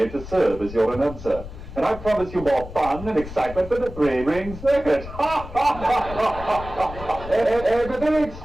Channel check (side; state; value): left; noise; rumble, 12 dB below the sound